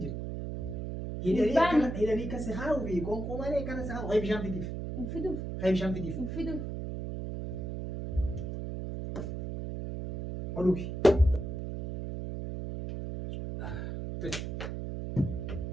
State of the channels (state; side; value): noise; right; hum, 5 dB below the sound